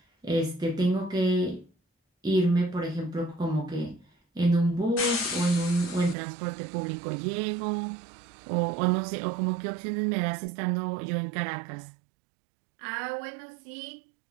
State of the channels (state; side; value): drops out; left; at 6.2 s